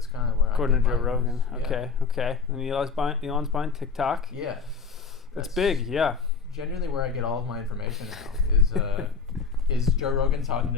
kind of where According I to Joe Rogan. Yeah. Okay. And Elon's buying TikTok. Yeah. That's big. Yeah. Genuinely, where I get all of my information now is Joe Rogan talking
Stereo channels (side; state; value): right; quieter; 5.1 dB